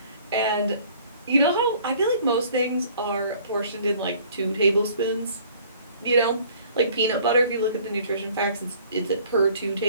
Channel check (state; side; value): inverted; both; correlation -0.55